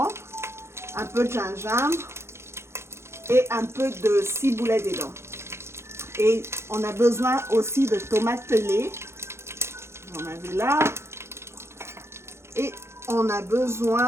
un peu de gingembre et un peu de ciboulette dedans. Et on a besoin aussi de tomates pelées. Vous en avez là. Et on a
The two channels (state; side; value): late; left; 0.13 ms